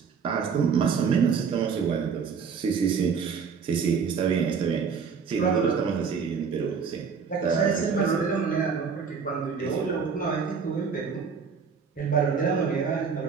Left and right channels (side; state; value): left; quieter; 6.0 dB